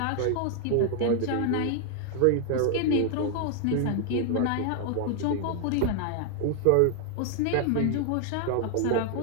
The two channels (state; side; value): different; both; correlation 0.00